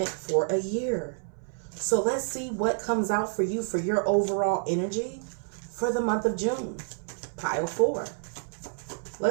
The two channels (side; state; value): left; silent; 57 dB below the other